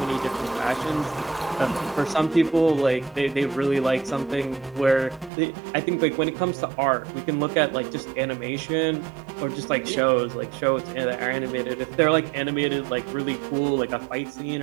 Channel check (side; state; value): left; drops out; at 5.3 s